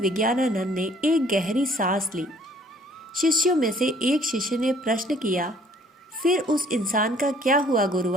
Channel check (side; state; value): both; normal; correlation 0.58